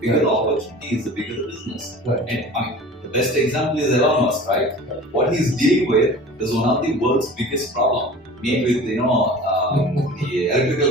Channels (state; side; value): normal; both; correlation 0.40